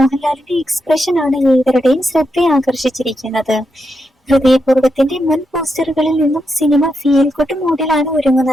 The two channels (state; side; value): normal; both; correlation 0.84